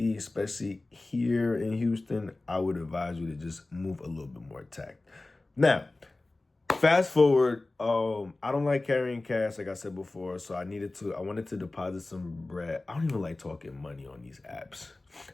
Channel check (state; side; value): quieter; right; 3.0 dB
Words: especially here in Houston, I would advise you to just move a little bit more tact. Now, fast forward, I don't like carrying cash, like I said before, so I wanted to deposit some bread. I don't even like talking money on these apps